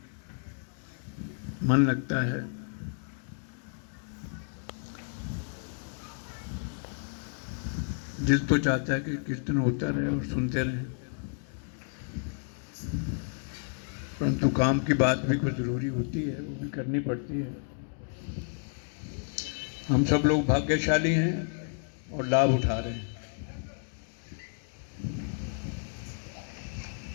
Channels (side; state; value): right; silent; 57 dB below the other